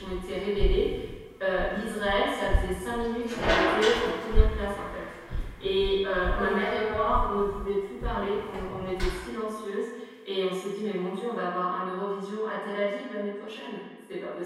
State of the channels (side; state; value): both; identical; correlation 1.00